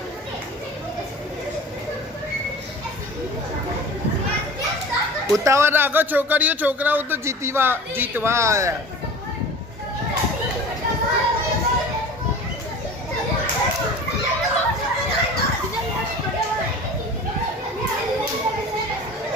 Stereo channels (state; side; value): normal; both; correlation 0.38